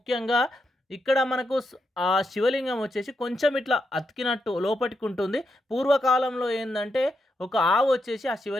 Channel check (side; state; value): both; normal; correlation 0.83